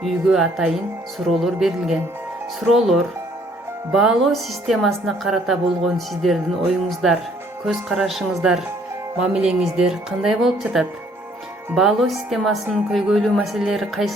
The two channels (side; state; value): both; normal; correlation 0.62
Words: үйгө атайын суроолор берилген. Суроолор: баалоо системасына карата болгон сиздердин оюңуздар, көз карашыңыздар, мамилеңиздер кандай болуп жатат? Баалоо системасынын көйгөйлүү маселелери